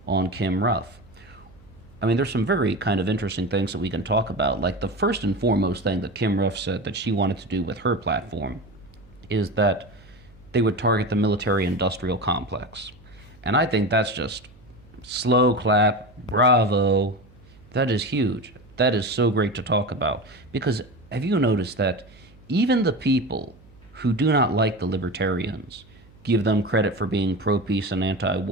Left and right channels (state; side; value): noise; right; hum, 26 dB below the sound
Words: on Kim Ruff. I mean, there's some very kind of interesting things that we can talk about. Like the first and foremost thing that Kim Ruff said that she wanted to do with her platform is that they would target the military industrial complex. And I think that's just slow clap, bravo. That is huge. That is so great to talk about. Because have you noticed that even the people who do not like the libertarians give them credit for being pro-peace and